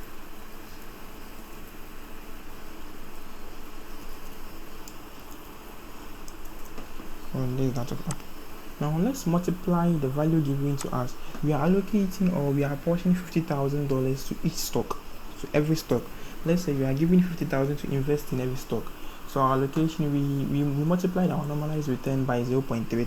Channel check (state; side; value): identical; both; correlation 1.00